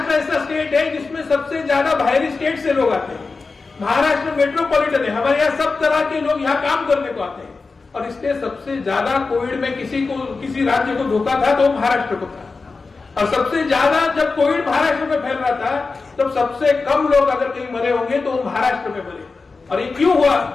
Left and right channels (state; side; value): quieter; right; 4.2 dB